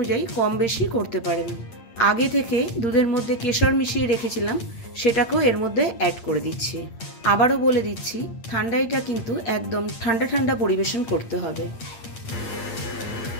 কম বেশি করতে পারেন। আগে থেকে দুধের মধ্যে কেশর মিশিয়ে রেখেছিলাম, সেটাকেও এর মধ্যে অ্যাড করে দিচ্ছি। আবারও বলে দিচ্ছি, ঠান্ডাইটা কিন্তু একদম ঠান্ডা ঠান্ডা পরিবেশন করতে হবে।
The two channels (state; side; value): late; right; 8.7 ms